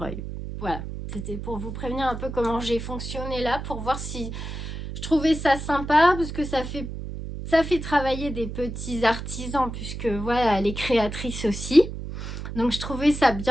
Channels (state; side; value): noise; right; hum, 7 dB below the sound